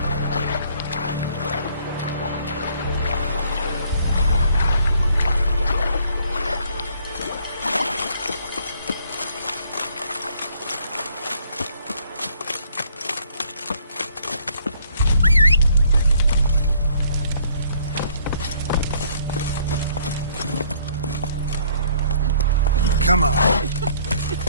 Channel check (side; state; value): both; inverted; correlation -0.62